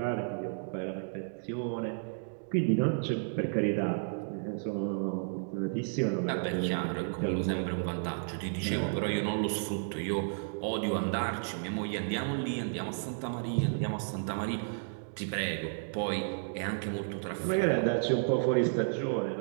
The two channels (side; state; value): left; silent; digital silence